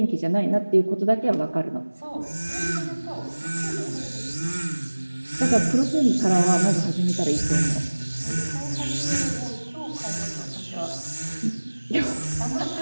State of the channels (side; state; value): both; inverted; correlation -1.00